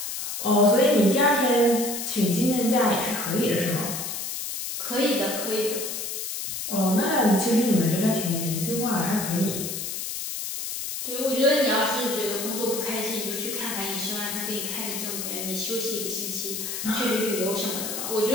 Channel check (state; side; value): noise; left; hiss, 5 dB below the sound